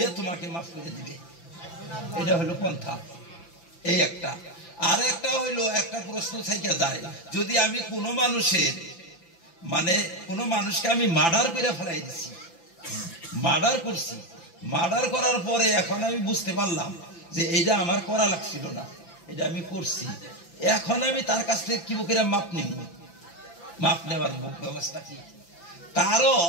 তোমাকে মাফ করে দিবে। এটা হলো পন্থা। এই একটা। আর একটা হইলো, একটা প্রশ্ন থেকে যায়, যদি আমি কোনো মানুষের কোনো মানুষকে আমি মার্ডার করে ফেলাই দিছি, মার্ডার করছি, মার্ডার করার পরে এখন আমি বুঝতে পারলাম যে এটা আমার করা লাগছিল না, এটা আমি করছি, এখন আমি তার কাছ থেকে কি করে মাপ নিব? মাপ নেওয়ার ব্যবস্থা কি? তারও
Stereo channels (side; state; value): right; late; 5.9 ms